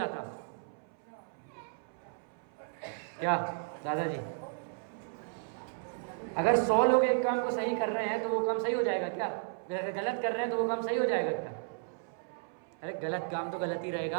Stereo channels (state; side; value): silent; left; 55 dB below the other